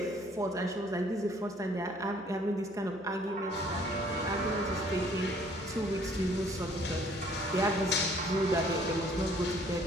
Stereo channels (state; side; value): normal; both; correlation 0.59